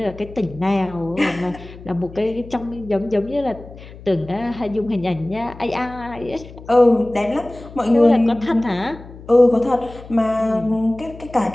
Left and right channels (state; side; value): noise; left; hum, 17 dB below the sound